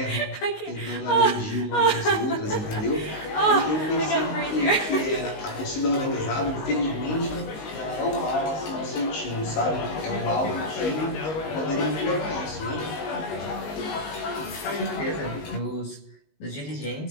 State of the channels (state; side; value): late; right; 19 ms